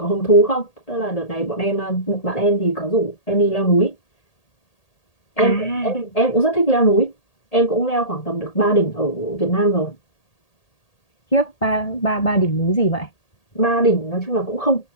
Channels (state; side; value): late; right; 1.8 ms